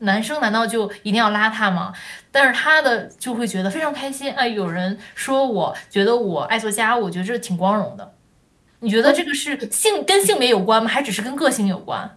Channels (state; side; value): identical; both; correlation 1.00